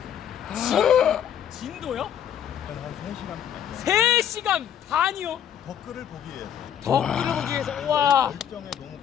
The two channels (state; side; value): quieter; right; 9.5 dB